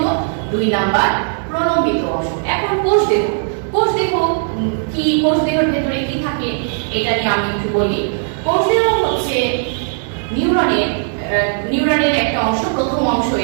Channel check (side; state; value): left; silent; digital silence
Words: 2 নাম্বার প্রলম্বিত অংশ। এখন কোষদেহ কি, কোষদেহের ভেতরে কি থাকে এটা নিয়ে আমি একটু বলি। কোষদেহ হচ্ছে নিউরনের একটা অংশ, প্রথম অংশ